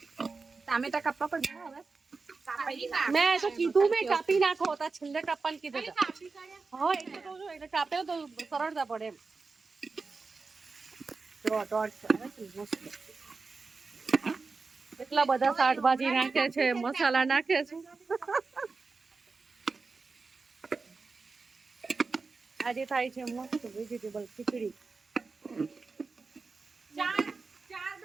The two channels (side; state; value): left; quieter; 4.3 dB